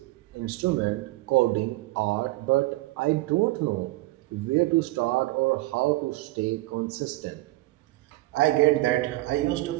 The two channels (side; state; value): left; quieter; 19.5 dB